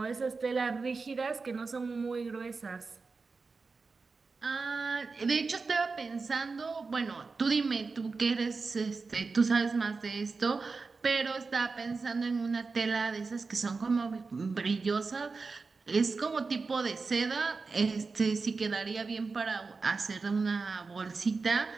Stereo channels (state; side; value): quieter; left; 4.3 dB